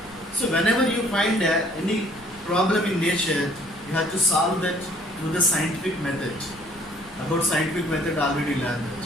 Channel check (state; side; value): noise; left; rumble, 24 dB below the sound